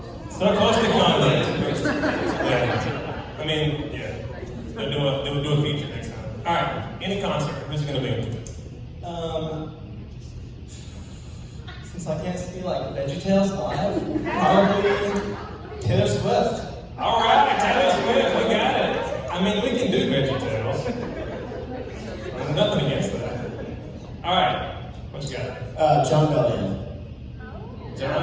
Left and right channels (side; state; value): both; identical; correlation 1.00